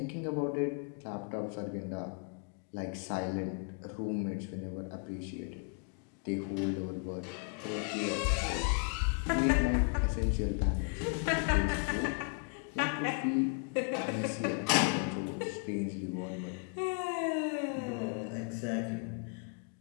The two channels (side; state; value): right; quieter; 38.6 dB